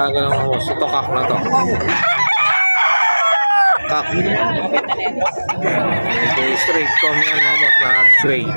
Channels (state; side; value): inverted; both; correlation -1.00